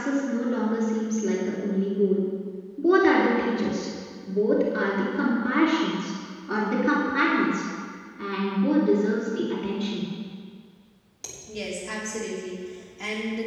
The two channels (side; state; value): both; identical; correlation 1.00